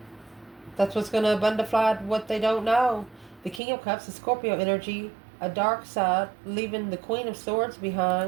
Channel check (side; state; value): left; drops out; at 3.6 s